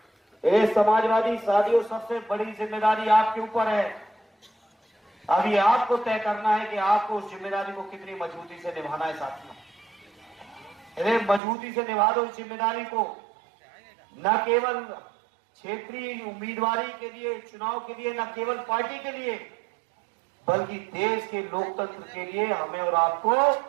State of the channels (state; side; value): drops out; left; at 11.4 s